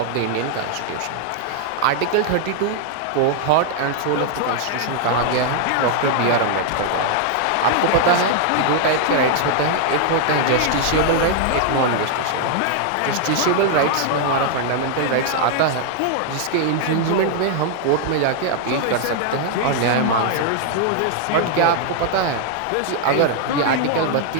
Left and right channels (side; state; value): both; different; correlation 0.00